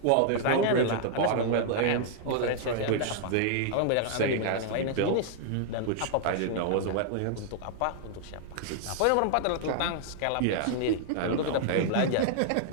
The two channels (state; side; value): different; both; correlation -0.01